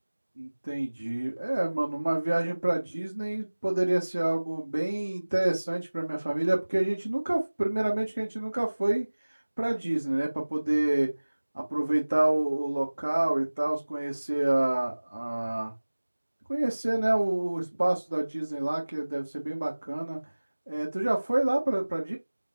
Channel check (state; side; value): inverted; both; correlation -1.00